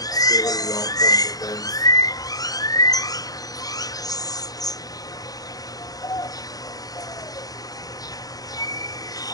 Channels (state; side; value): late; right; 0.18 ms